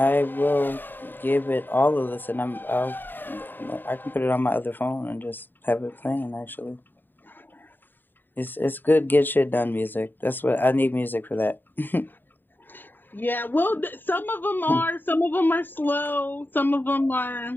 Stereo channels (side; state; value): right; late; 0.093 ms